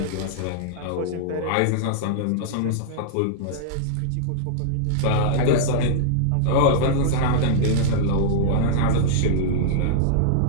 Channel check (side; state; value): both; different; correlation -0.02